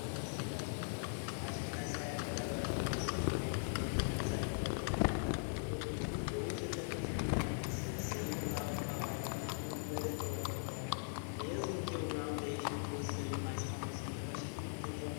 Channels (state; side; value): silent; right; 51 dB below the other